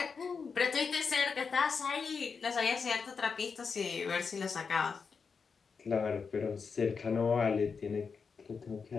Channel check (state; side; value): quieter; right; 5.4 dB